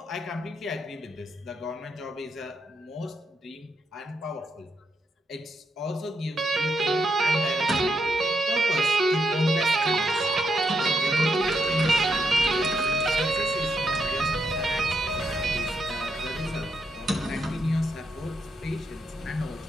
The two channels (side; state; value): both; normal; correlation 0.80